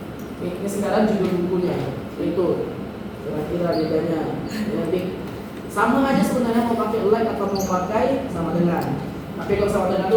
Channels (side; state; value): both; identical; correlation 1.00